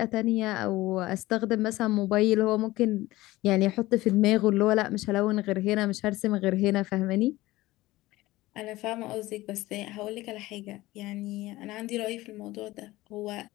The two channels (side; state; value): right; quieter; 18.3 dB